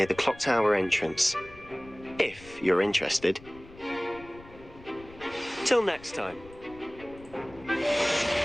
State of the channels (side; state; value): left; noise; rumble, 20 dB below the sound